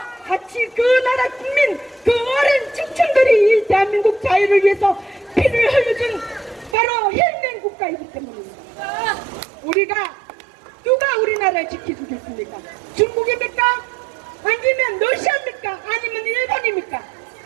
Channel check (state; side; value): drops out; left; at 6.8 s